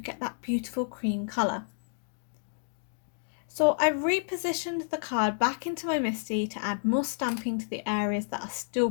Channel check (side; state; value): right; silent; digital silence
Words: that beautiful cream colour. So I've repositioned the card back into my MISTI to add more stamping to the areas that are still